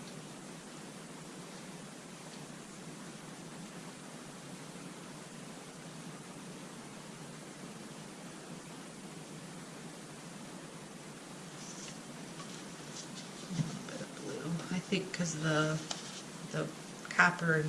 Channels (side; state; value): both; identical; correlation 1.00